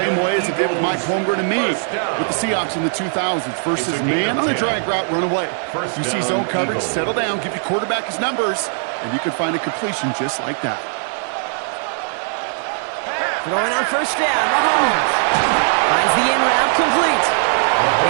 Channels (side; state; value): left; silent; 59 dB below the other